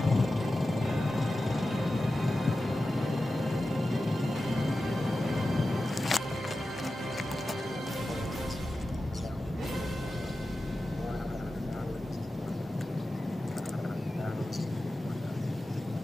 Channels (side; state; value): both; normal; correlation 0.93